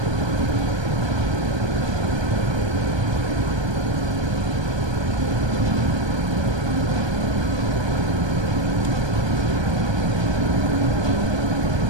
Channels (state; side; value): late; left; 1.2 ms